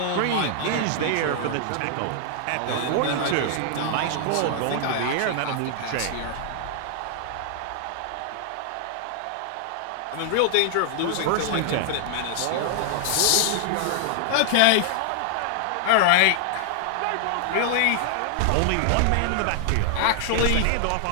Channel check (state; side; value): different; both; correlation 0.00